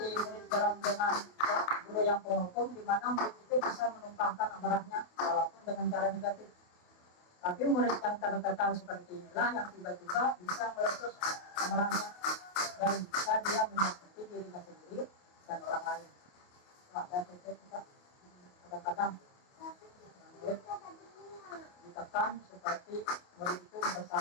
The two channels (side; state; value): right; late; 28 ms